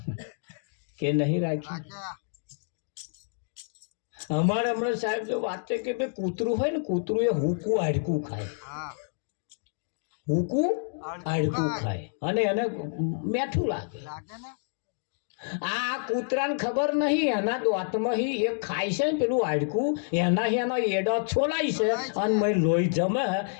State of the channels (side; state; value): right; silent; digital silence